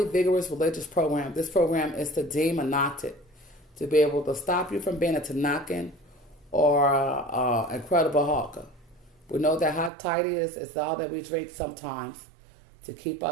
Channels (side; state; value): left; drops out; at 9.9 s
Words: vigorous religious program. This program is to demonize it, to be able to stop you from being a Tanakan or Incredible Hulk. We know that hot toddy is all that we drink sometimes to keep